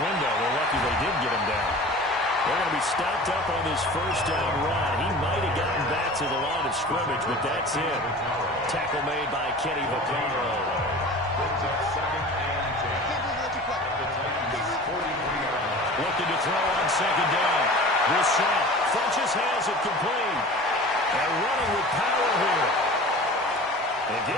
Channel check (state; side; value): normal; both; correlation 0.39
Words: They're lucky they did get him down. They're going to be stopped up on this 1st down run. He might have gotten back to the line of scrimmage, but that's it. Tackle made by Kenny Vaccaro. Looking to throw on 2nd down. Brissett. Funchess has it complete. And running with power here. They